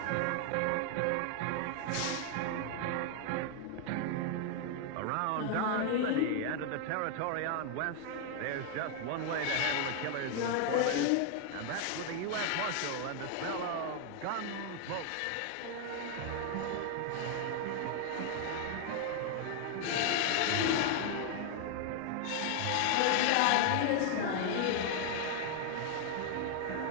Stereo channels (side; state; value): both; different; correlation 0.00